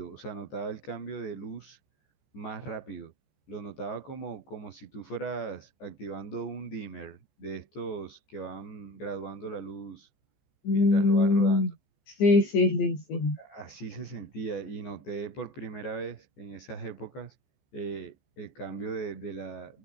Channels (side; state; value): right; late; 14 ms